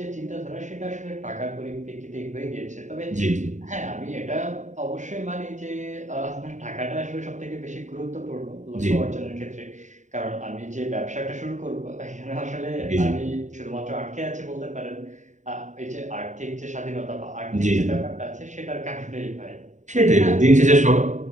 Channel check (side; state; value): left; late; 0.35 ms